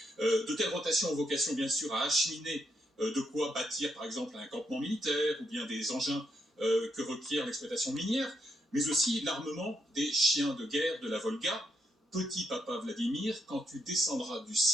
De telles rotations ont vocation, bien sûr, à acheminer de quoi bâtir, par exemple, un campement militaire ou bien des engins que requiert l'exploitation minière, mais aussi l'armement des chiens de guerre de la Volga. Petit papa Vladimir, quand tu descendras du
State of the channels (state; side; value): normal; both; correlation 0.78